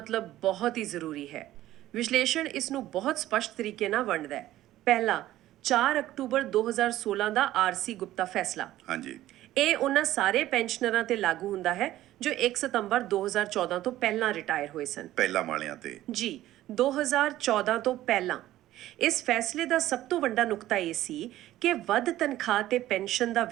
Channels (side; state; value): left; quieter; 14.4 dB